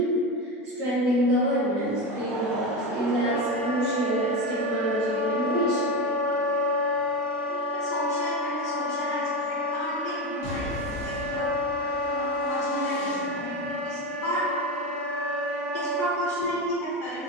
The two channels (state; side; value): normal; both; correlation 0.18